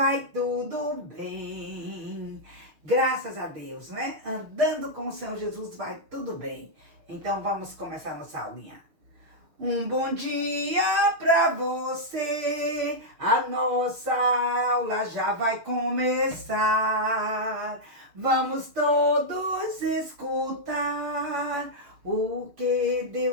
tudo bem. Graças a Deus, né? Andando com o Senhor Jesus vai tudo bem. Então vamos começar nossa aulinha. Um bom dia pra você, a nossa aula já vai começar. Vamos todos escutar o que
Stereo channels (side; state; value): left; late; 6.5 ms